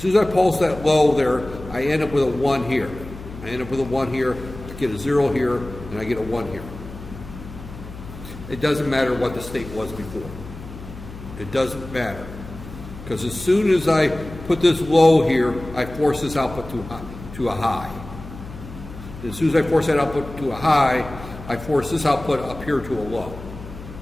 as I pulse that low there, I end up with a 1 here. I end up with a 1 here. get a 0 here, and I get a 1 here. It doesn't matter what the state was before. It doesn't matter. Because as soon as I put this low here, I force this output to a high. As soon as I force that output to a high, I force this output up here to a low.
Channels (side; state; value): left; noise; hum, 14 dB below the sound